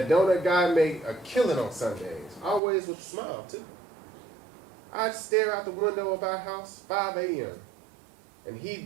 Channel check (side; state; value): left; drops out; at 2.6 s